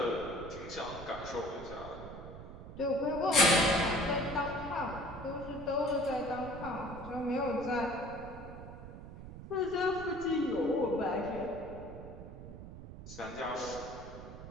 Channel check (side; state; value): right; noise; rumble, 12 dB below the sound